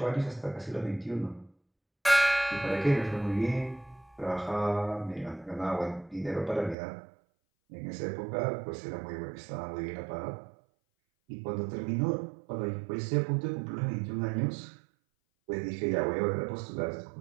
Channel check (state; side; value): drops out; left; at 6.8 s